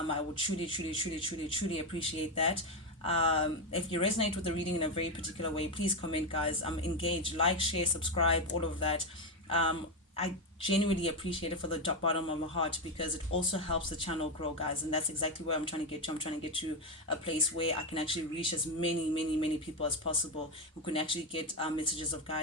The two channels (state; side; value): normal; both; correlation 0.09